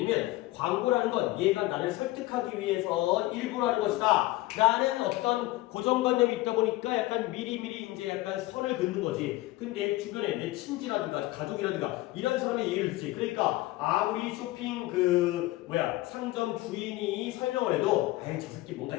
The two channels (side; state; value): right; quieter; 18.4 dB